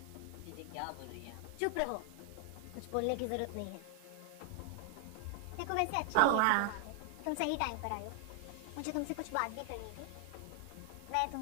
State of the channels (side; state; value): both; different; correlation 0.00